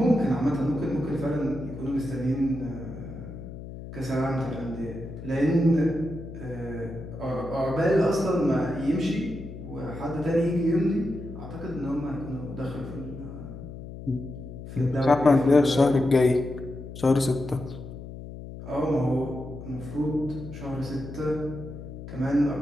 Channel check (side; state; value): left; noise; hum, 11 dB below the sound